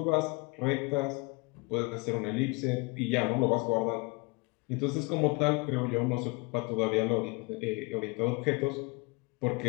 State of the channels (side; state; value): right; quieter; 27.6 dB